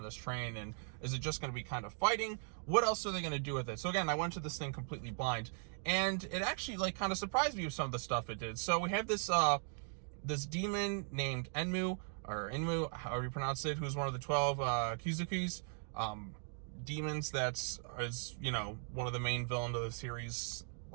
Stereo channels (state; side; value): silent; left; 52 dB below the other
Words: this train, and is it just going to be kind of fighting? What else are they going to do with it? So again, I went to this thing completely blind, and it actually, like, kind of surprised me with some of the stuff it did. So we have this, this demon named Enmu, or Inmu, however you pronounce it, who's one of the 12 Kizukis. demons that's is, you know, one of the main villains of the series,